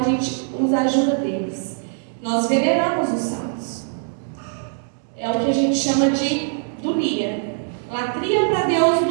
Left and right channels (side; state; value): left; silent; 64 dB below the other